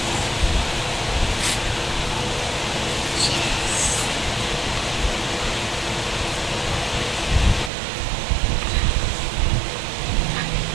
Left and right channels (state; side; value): drops out; left; at 7.7 s